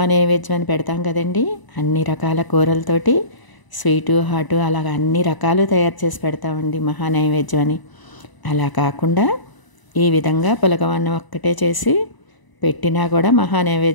అని పెడతాం కదండి. అన్ని రకాల కూరలతోటి స్వీటు హాటు అలాగ అన్ని రకాలు తయారు చేసి పెడతామండి మహానైవేద్యం అని. అలా కాకుండా ఈ విధంగా పులగవన్నం ఒక్కటే చేసి పెట్టినా కూడా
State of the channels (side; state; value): right; late; 1.0 ms